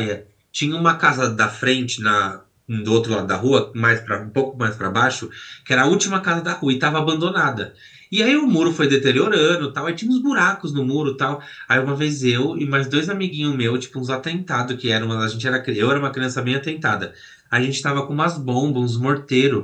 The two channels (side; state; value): both; identical; correlation 1.00